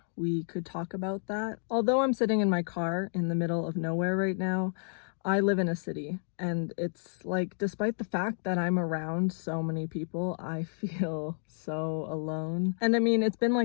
we could talk about that. Although I'm sitting in my car in the middle of nowhere right now, I live in a city, and it's like, despite the fact that I'm around so many people, I feel so alone. And I mean, it's been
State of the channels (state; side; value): silent; right; digital silence